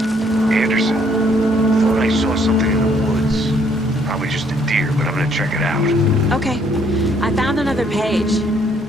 Anderson, thought I saw something in the woods. Probably just a deer, but I'm gonna check it out. Okay. I found another page.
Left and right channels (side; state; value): both; normal; correlation 0.66